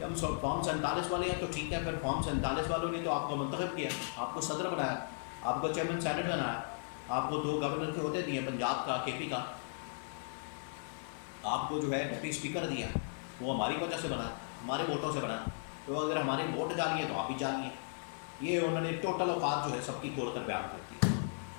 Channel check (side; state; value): right; silent; digital silence